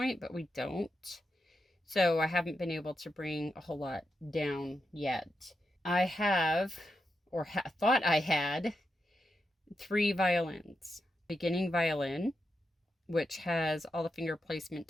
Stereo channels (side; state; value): both; normal; correlation 0.86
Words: but we don't. So I haven't been able to bring a whole lot down yet. I have, or thought I had, 3 violins. Beginning violin, which has all the finger placement